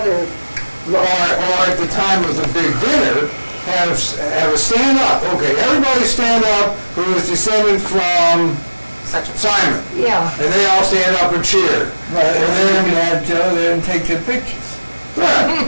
or at the time of the big dinner, have a stand up. Okay, everybody stand up who is descended from Simon. Yeah. And they all stand up and cheer. Right, and then you have Joe there and take the pictures.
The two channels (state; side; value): inverted; both; correlation -1.00